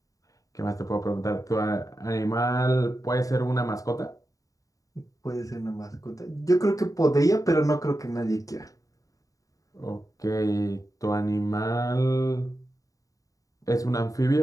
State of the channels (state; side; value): late; right; 0.16 ms